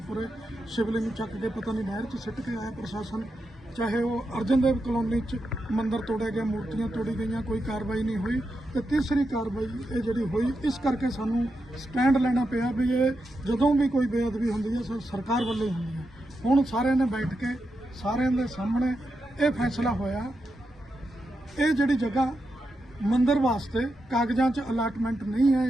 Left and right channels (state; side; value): normal; both; correlation 0.87